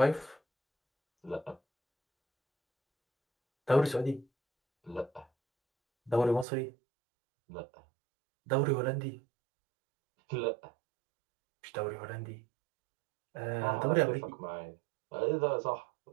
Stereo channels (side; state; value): left; drops out; at 6.5 s